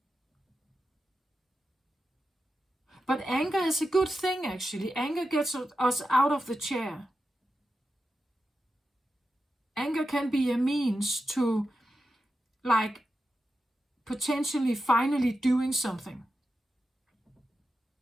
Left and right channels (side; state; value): both; normal; correlation 0.90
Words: But anger is a good thing, actually. Anger gets us out of the chair. Anger can be a means to, like, potentially finally doing something.